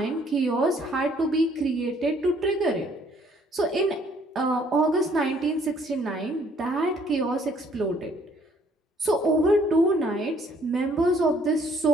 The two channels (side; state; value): both; normal; correlation 0.63